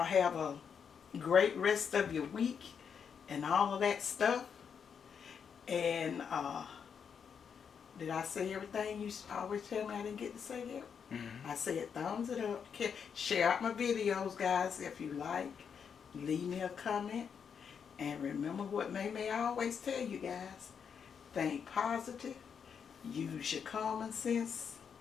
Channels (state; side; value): quieter; right; 7.0 dB